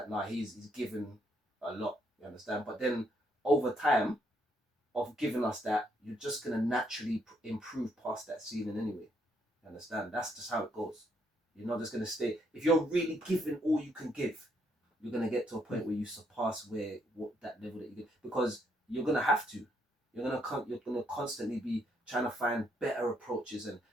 nah, he's given a lot. You understand? But then over time of giving us that, you're just gonna naturally improve past that ceiling anyway. You understand? That's just how it goes. You're not just gonna stay. If you're really giving all you can give, you're gonna get to a point where you surpass what that level that you get, because you're gonna have to. You're gonna constantly be trying to find better approaches and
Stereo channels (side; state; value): both; normal; correlation 0.73